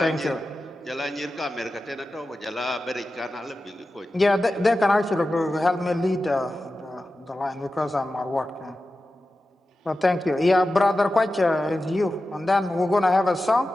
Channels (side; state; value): both; normal; correlation 0.93